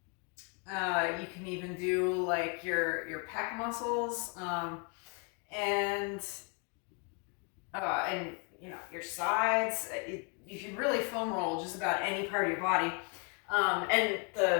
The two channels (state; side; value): quieter; right; 36.6 dB